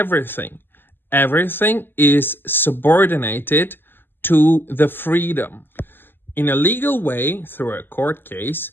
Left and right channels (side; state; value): right; late; 0.097 ms